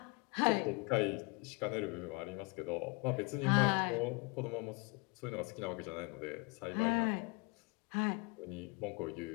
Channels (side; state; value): right; quieter; 28.3 dB